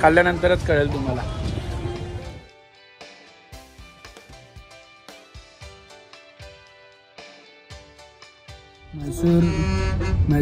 खाल्ल्यानंतरच कळेल तुम्हाला.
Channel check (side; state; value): both; identical; correlation 1.00